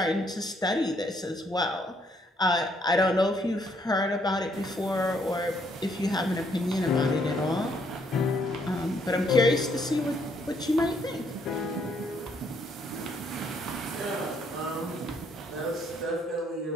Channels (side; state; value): both; normal; correlation 0.70